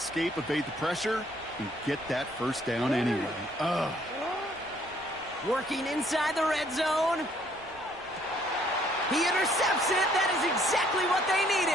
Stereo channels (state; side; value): noise; left; rumble, 27 dB below the sound